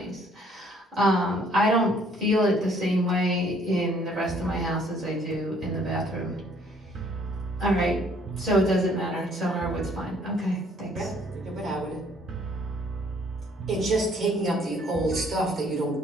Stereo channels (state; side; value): normal; both; correlation 0.62